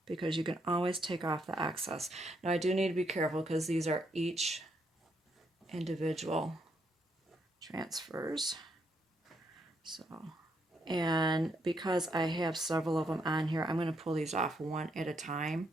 because you can always take off the excess. Now I do need to be careful because these are each individual transfers. So, and because I have several of them on here, I'm going to pull these off one at a time.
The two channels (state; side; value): normal; both; correlation 0.75